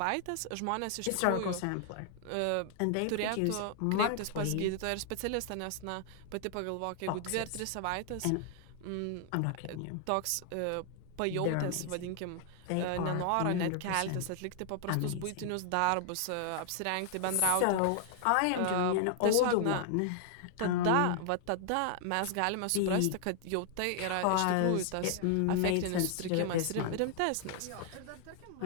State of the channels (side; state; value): both; different; correlation 0.00